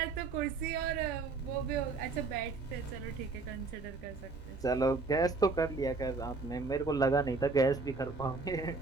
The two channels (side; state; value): left; quieter; 3.9 dB